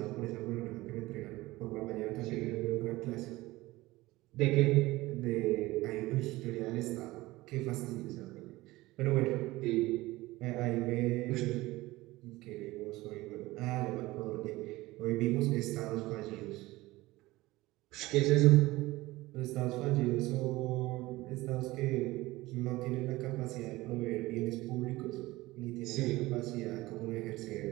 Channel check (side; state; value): left; quieter; 19.3 dB